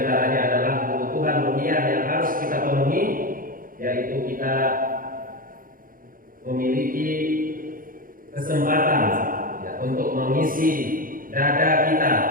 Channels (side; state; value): left; late; 0.41 ms